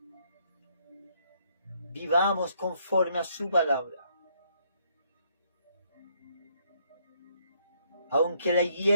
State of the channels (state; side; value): inverted; both; correlation -0.70